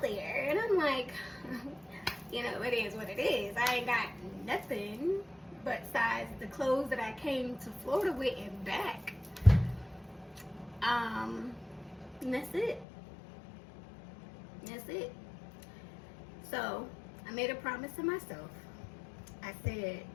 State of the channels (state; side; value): drops out; right; at 12.9 s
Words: there? And I'm like, it is what it is. I ain't got nothing besides the clothes that I came to Florida with and back. And that's it. So I made a promise to myself. I said,